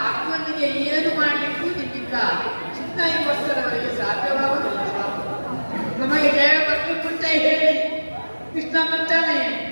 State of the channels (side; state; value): both; inverted; correlation -1.00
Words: ಅರ್ಜುನನಿಗೆ ಏನು ಮಾಡಲಿಕ್ಕೂ ನಿಮ್ಮಿಂದ ಚಿನ್ನೈವತ್ತರವರೆಗೆ ಸಾಧ್ಯವಾಗುವುದಿಲ್ಲ. ನಮಗೆ ಜಯ ಬಗ್ಗೆ ಮುಂಚೆ ಹೇಳಿ ಕೃಷ್ಣ ಬಂತಾನೆ.